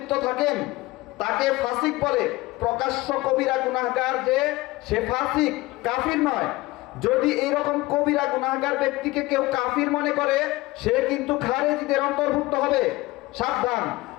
থাকেন তাকে ফাসিক বলে। প্রকাশ্য কবিরা গুনাহগার যে, সে ফাসিক, কাফির নয়। যদি এইরকম কবিরা গুনাহগার ব্যক্তিকে কেউ কাফির মনে করে, সে কিন্তু খারেজিদের অন্তর্ভুক্ত হবে, সাবধান।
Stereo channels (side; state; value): right; quieter; 19.7 dB